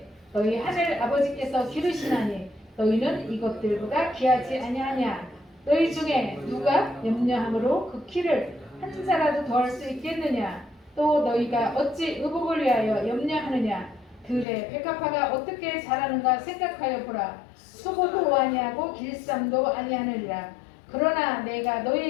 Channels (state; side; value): drops out; right; at 14.5 s